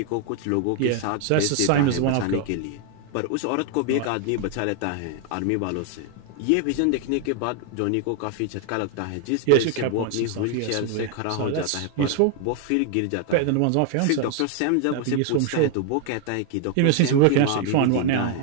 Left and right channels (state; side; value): different; both; correlation 0.00